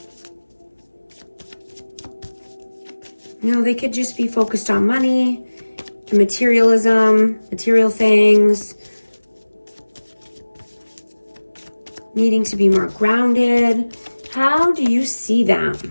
You know, they could just be focused on money, materialism, material things, needing to be more grounded. How do you see them?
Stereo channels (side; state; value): both; inverted; correlation -1.00